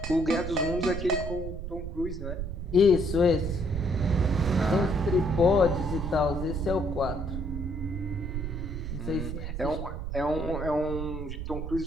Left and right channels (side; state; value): right; noise; rumble, 5 dB below the sound